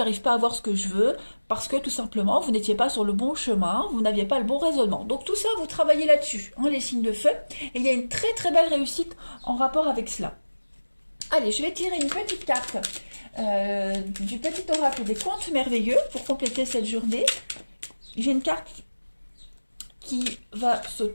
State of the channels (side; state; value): both; inverted; correlation -1.00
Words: pas à voir ce que je veux, parce que tout simplement, vous n'étiez pas sur le bon chemin, vous n'aviez pas le bon raisonnement. Donc tout ça, vous travaillez là-dessus, hein, les signes de feu, et il y a une très très belle réussite en rapport avec cela. Allez, je vais tirer une petite carte du petit oracle des contes merveilleux pour compléter cette journée. J'ai une carte qui va